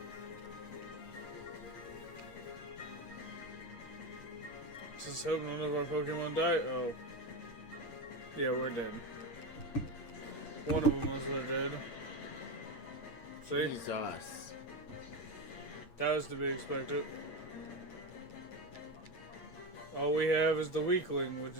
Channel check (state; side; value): late; right; 8.7 ms